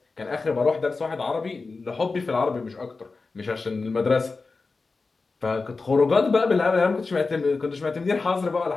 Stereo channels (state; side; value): quieter; right; 4.0 dB